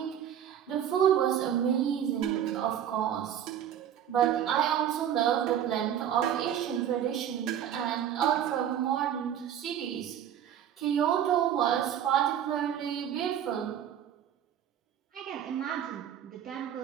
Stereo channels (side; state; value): left; quieter; 9.9 dB